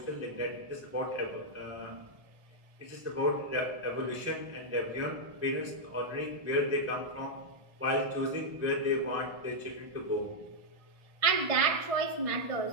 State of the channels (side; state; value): left; late; 1.6 ms